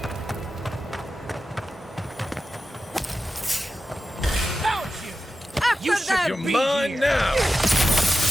You should you're mine now!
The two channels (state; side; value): normal; both; correlation 0.91